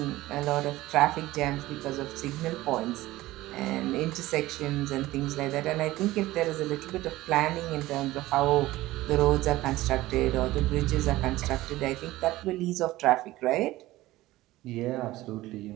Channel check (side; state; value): left; quieter; 17.3 dB